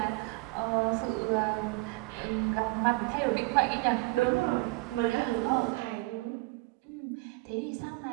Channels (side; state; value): left; quieter; 24.8 dB